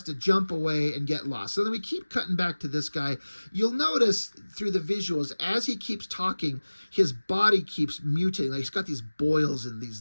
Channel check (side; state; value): both; inverted; correlation -1.00